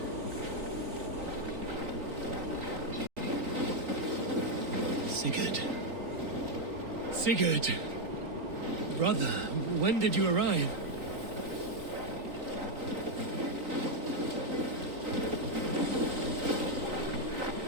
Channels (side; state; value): left; late; 3.9 ms